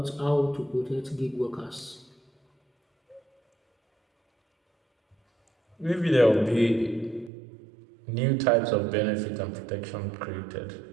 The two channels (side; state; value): left; drops out; at 7.3 s